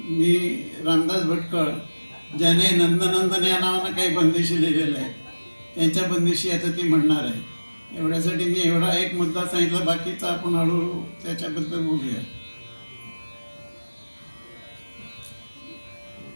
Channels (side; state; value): both; inverted; correlation -1.00